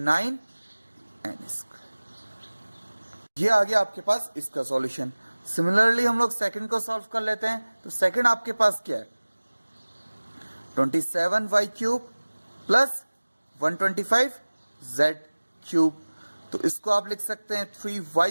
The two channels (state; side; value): inverted; both; correlation -1.00